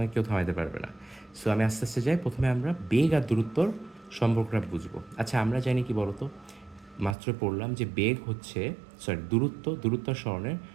কেউ থামাইতে পারবে না। সো আমি আস্তে আস্তে যাই, প্রথমে আমরা বেগ আর দূরত্বর সম্পর্কটা বুঝবো। আচ্ছা, আমরা জানি কি বলতো, মাত্র পড়লাম যে বেগ হচ্ছে, দূরত্ব আর সরণের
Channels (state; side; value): drops out; left; at 7.2 s